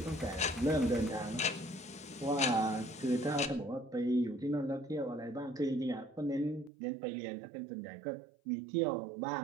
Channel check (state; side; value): drops out; left; at 6.7 s